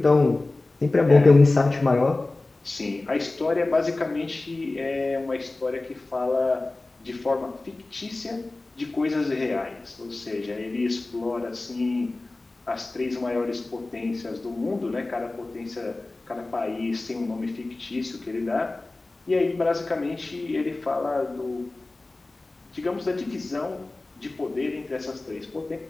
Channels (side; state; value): right; quieter; 3.1 dB